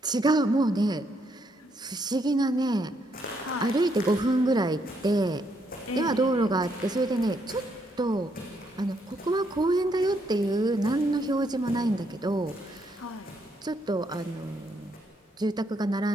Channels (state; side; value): normal; both; correlation 0.75